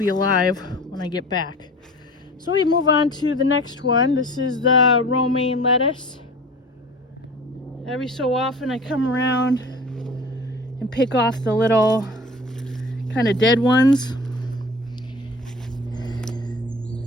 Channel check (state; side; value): normal; both; correlation 0.40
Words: alive when I get back. So we move on to the next one. This is the romaine lettuce. Every so often I come around and pick off the little kind of dead ones.